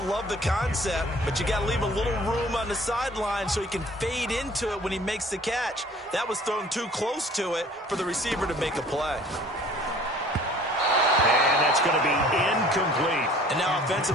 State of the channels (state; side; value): normal; both; correlation 0.51